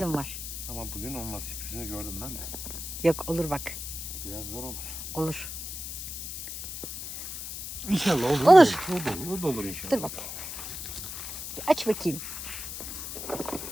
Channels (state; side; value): noise; left; hiss, 7 dB below the sound